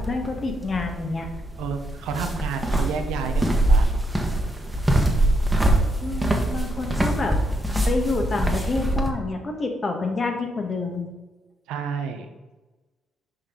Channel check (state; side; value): normal; both; correlation 0.78